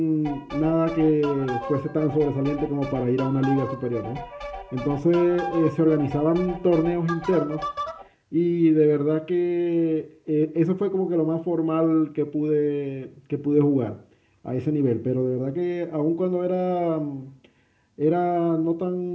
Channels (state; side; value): identical; both; correlation 1.00